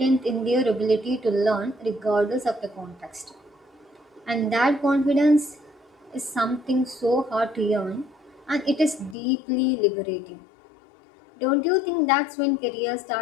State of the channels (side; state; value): right; drops out; at 9.2 s